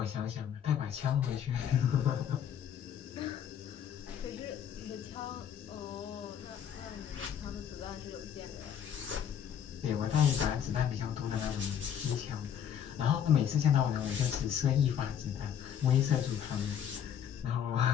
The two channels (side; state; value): right; quieter; 9.0 dB